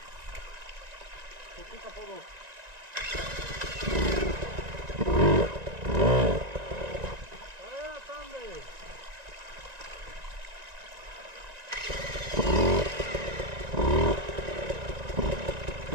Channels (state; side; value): late; left; 1.9 ms